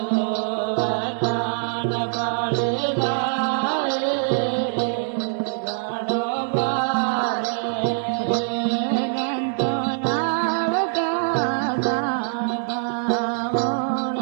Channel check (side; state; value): left; silent; 61 dB below the other